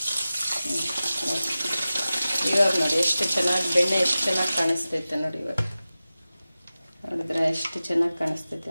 ಇವಾಗ ನೋಡಿ ಎಷ್ಟು ಚೆನ್ನಾಗಿ ಬೆಣ್ಣೆ ಎಷ್ಟು ಚೆನ್ನಾಗಿ ಕಾಣಿಸ್ತೈತೆ ನೋಡಿ. ಇವಾಗ ನೋಡಿದ್ರೆ ಎಷ್ಟು ಚೆನ್ನಾಗಿ ಕಾಣಿಸ್ತೈತೆ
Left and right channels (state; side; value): inverted; both; correlation -0.95